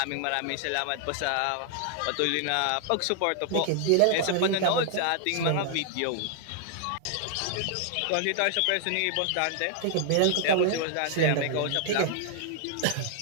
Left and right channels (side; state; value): both; different; correlation 0.00